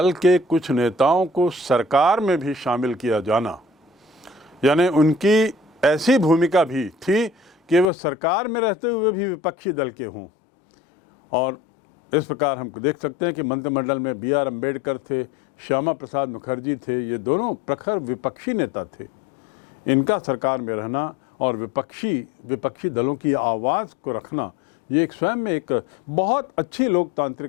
के कुछ नेताओं को सरकार में भी शामिल किया जाना, यानी उनकी ऐसी भूमिका भी थी कि वह सरकार में रहते हुए भी विपक्षी दल के हों। और इस प्रकार हम देख सकते हैं कि मंत्रिमंडल में बी आर अम्बेडकर थे, श्यामा प्रसाद मुखर्जी थे, ये दोनों प्रखर विपक्षी नेता थे। इनका सरकार में रहना और विपक्षी दलों की आवाज़ को रखना, ये एक स्वयं में एक बहुत अच्छी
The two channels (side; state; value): right; drops out; at 7.9 s